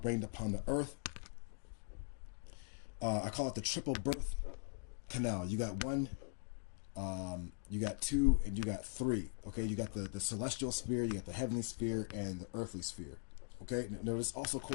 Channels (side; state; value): right; silent; digital silence